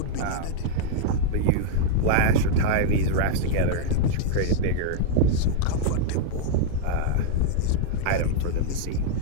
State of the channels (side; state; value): both; different; correlation -0.01